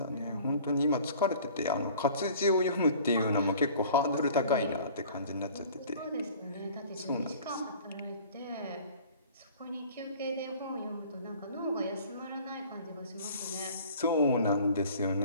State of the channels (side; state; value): both; inverted; correlation -0.48